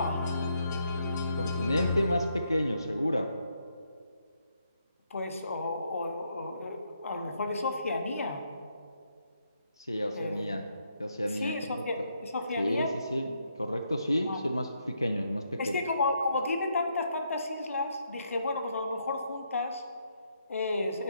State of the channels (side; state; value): both; inverted; correlation -0.76